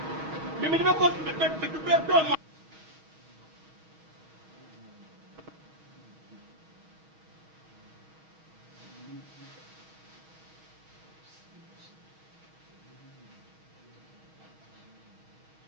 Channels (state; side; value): late; left; 6.3 ms